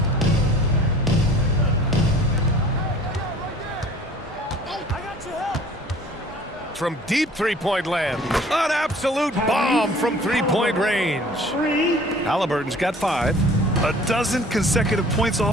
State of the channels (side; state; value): both; normal; correlation 0.50